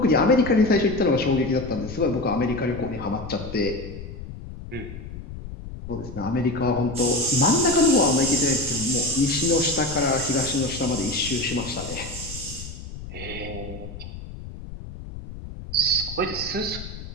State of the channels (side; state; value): left; noise; rumble, 11 dB below the sound